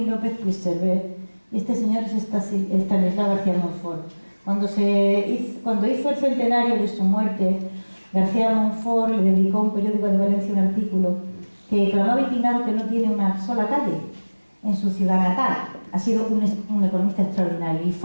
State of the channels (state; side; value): inverted; both; correlation -1.00